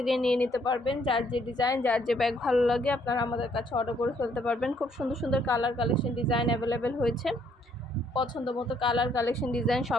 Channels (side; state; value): both; normal; correlation 0.68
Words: নিয়ে নিতে পারবেন। যার যে ডিজাইন, যার যে ব্যাগ ভালো লাগে আপনারা আমাদের কাছে অর্ডার করে ফেলতে পারবেন। খুব সুন্দর সুন্দর কালার কালেকশন ডিজাইন অ্যাভেলেবেল হয়েছে। পছন্দ মতো কালার কালেকশন ডিজাইন